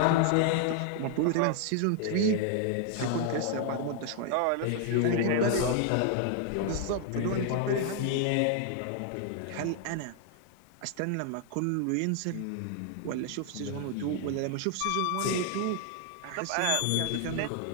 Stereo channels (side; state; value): both; different; correlation 0.00